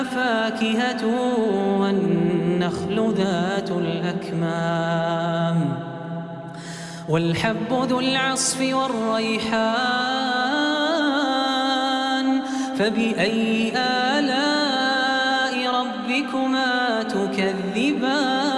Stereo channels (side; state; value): both; identical; correlation 1.00